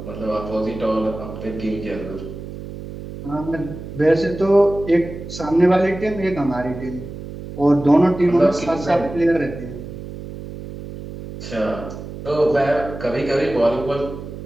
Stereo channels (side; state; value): right; noise; hum, 11 dB below the sound